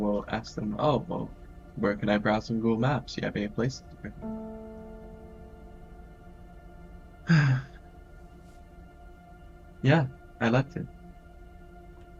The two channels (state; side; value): identical; both; correlation 1.00